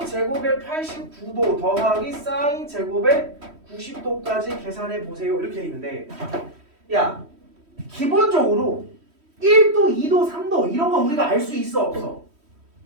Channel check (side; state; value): left; late; 3.1 ms